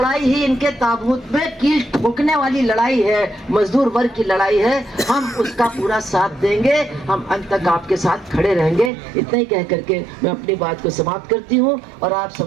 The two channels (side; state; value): left; drops out; at 8.9 s